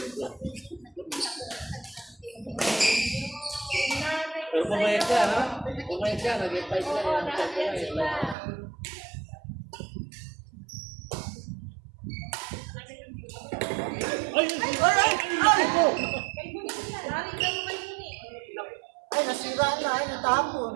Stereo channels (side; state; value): left; drops out; at 8.3 s